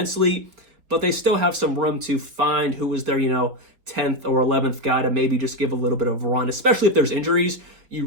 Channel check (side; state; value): left; late; 4.1 ms